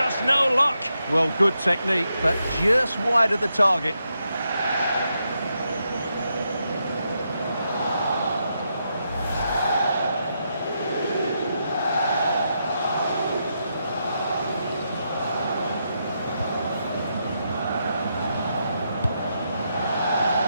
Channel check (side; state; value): both; inverted; correlation -0.83